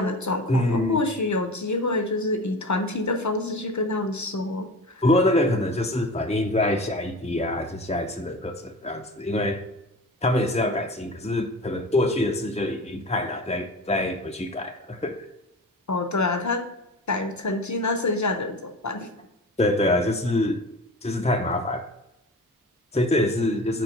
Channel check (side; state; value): both; normal; correlation 0.34